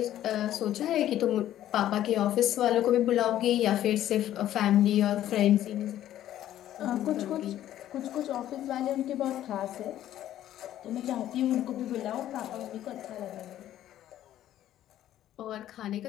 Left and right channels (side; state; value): right; quieter; 12.4 dB